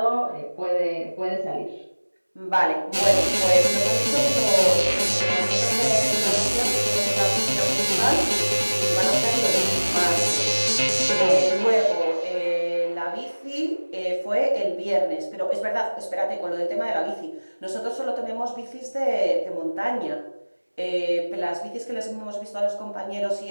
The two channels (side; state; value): both; inverted; correlation -1.00